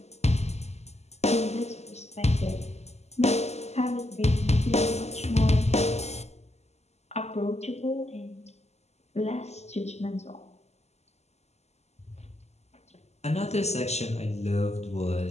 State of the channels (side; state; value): right; late; 0.32 ms